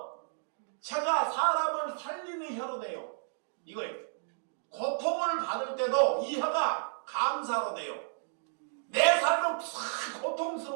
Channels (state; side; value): silent; left; digital silence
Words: 혀가 사람을 살리는 혀로 돼요. 이거예요. 고통을 받을 때도 이 혀가 감사로 돼요. 내 삶은